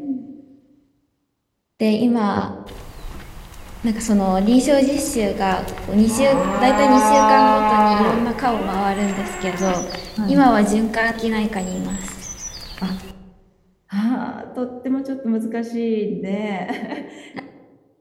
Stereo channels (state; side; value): identical; both; correlation 1.00